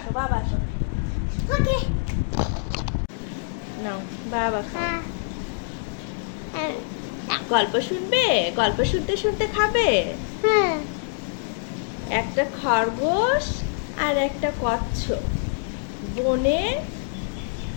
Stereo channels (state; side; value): silent; right; digital silence